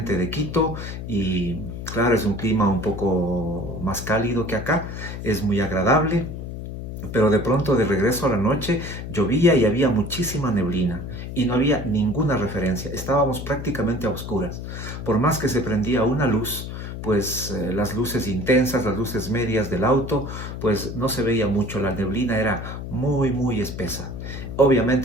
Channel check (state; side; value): noise; left; hum, 8 dB below the sound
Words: de Quito y claro, es un clima un poco más cálido que acá, es muy agradable. Pero de pronto, de regreso a la noche, llovía y había muchísima neblina y no había ninguna referencia. Estábamos prácticamente a oscuras. Por más que se prendía una luz, pues las luces intensas, las luces medias del auto, pues no se veía mucho. La neblina era muy espesa.